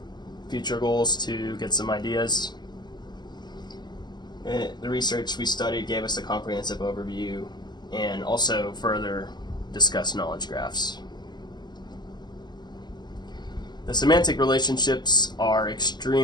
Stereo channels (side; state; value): right; late; 0.21 ms